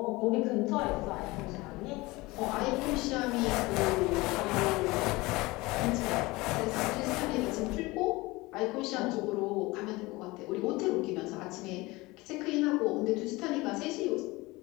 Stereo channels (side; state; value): right; quieter; 21.8 dB